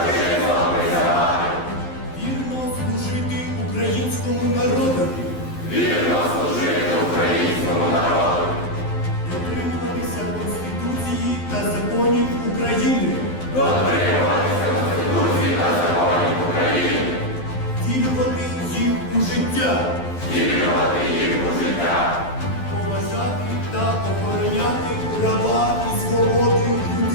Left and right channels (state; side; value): late; right; 12 ms